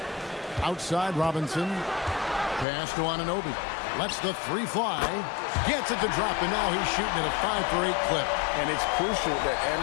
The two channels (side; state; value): right; drops out; at 2.7 s